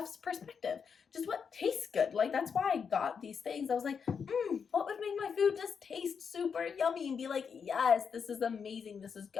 perspective. Just what tastes good. That's why I got these things. I was like, what would make my food just taste super yummy and be yes, this is amazing, this is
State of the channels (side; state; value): right; quieter; 6.4 dB